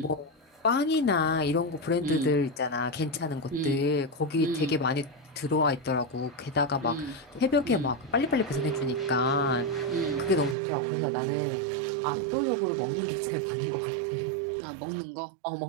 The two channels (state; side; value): drops out; left; at 10.6 s